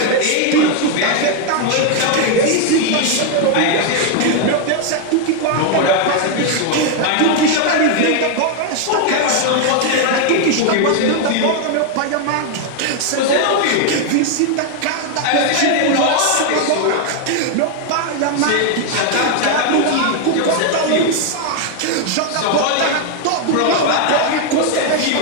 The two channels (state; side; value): different; both; correlation 0.01